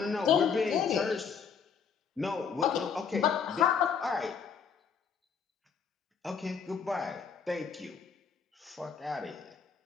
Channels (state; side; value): quieter; right; 6.4 dB